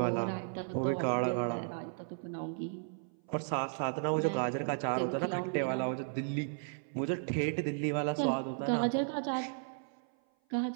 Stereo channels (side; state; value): left; silent; 55 dB below the other